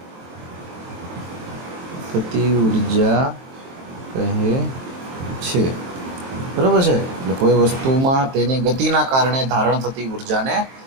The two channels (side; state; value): left; late; 23 ms